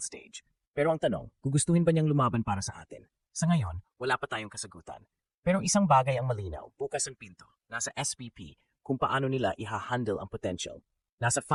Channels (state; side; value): identical; both; correlation 1.00